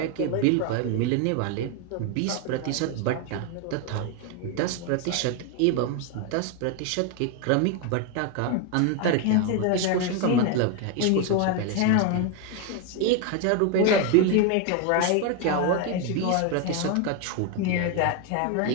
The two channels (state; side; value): different; both; correlation 0.01